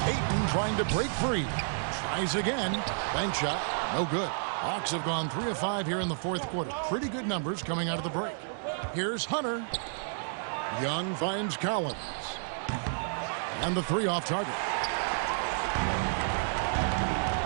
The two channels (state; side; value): silent; left; digital silence